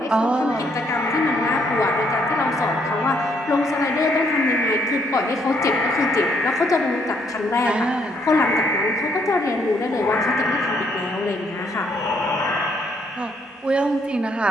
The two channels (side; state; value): both; normal; correlation 0.70